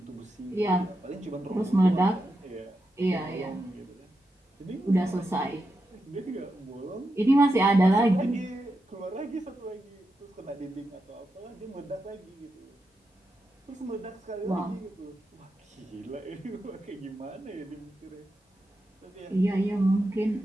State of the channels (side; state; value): both; normal; correlation 0.87